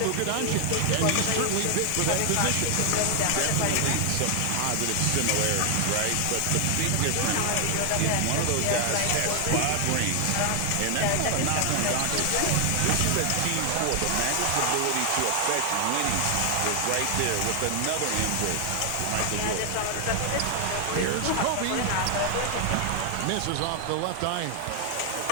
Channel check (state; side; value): different; both; correlation 0.00